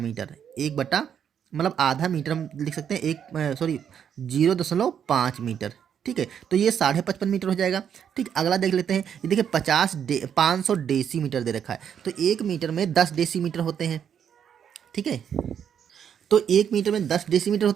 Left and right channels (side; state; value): left; quieter; 8.4 dB